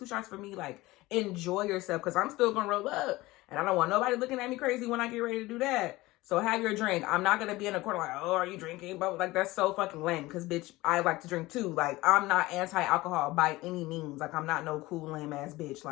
shots for me. Like, enjoy yourself, because I'm still going to roll up. And I don't want nobody looking at me crazy when I get ready to do that. So have your drink. I'm not going to be in a corner like, oh, are you drinking? But like, that's so fucking lame, because bitch, I like to drink too. Like, I'm not anti-alcohol by any means. Like, I'm not no cool lame ass bitch.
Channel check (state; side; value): quieter; right; 19.5 dB